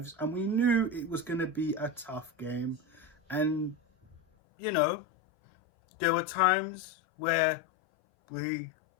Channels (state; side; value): drops out; right; at 4.2 s